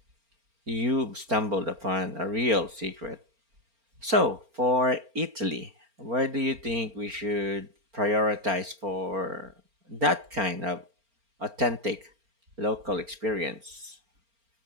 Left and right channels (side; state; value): left; late; 4.4 ms